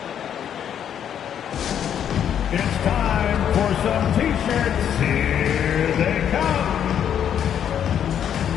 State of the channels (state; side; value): quieter; right; 9.2 dB